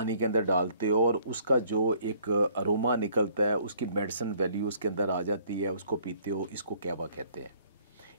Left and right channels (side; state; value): both; inverted; correlation -0.60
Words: के अंदर डालते हो और उसका जो एक अरोमा निकलता है, उसकी मेडिसिन वैल्यू उसके अंदर आ जाती है, उसको पीते हो, इसको कहवा कहते हैं।